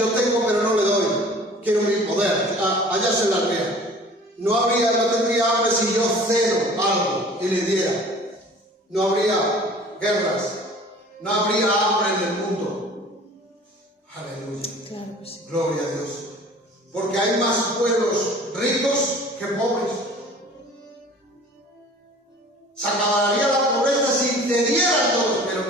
tengo pero no le doy. Quiero mi poder, allá se las vea. No tendría hambre si yo cedo algo y le diera. No habría guerras, no habría hambre en el mundo. Aleluya. Claro que sí. Gloria a Dios. Porque hay más pueblos ricos que pobres. Se acabaría la pobreza si cedieran todos, pero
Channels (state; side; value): normal; both; correlation 0.47